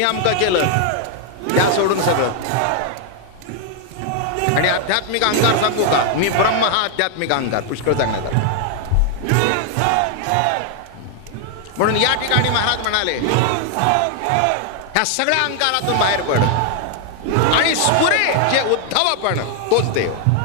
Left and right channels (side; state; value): both; different; correlation 0.00